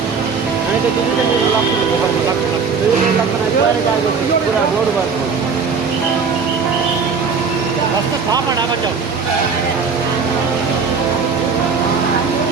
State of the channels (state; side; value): quieter; left; 5.4 dB